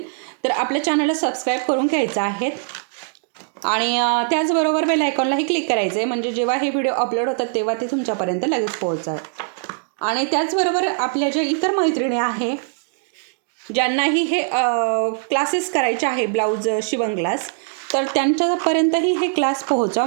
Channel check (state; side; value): silent; left; digital silence